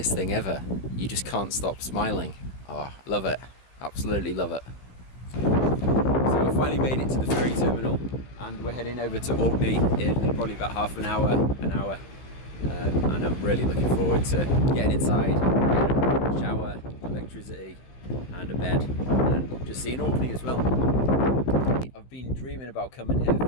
thing ever. You just can't stop smiling. Oh, love it. Absolutely love it. So I finally made it to the ferry terminal and we're heading over to Orkney in probably about half an hour. And I'm really looking forward to getting inside, getting a shower, electricity and a bed, and just seeing Orkney as well. I've been dreaming about coming here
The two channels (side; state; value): right; late; 16 ms